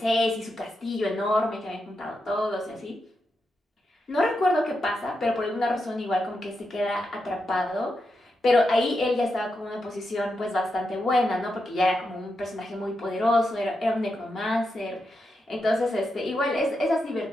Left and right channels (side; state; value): both; normal; correlation 0.86